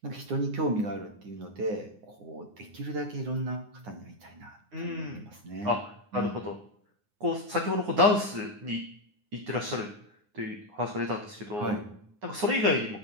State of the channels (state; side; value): late; left; 9.7 ms